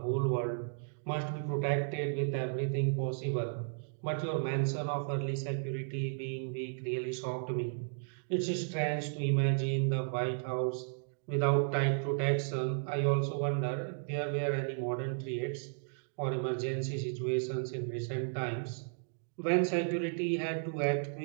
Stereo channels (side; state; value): left; silent; digital silence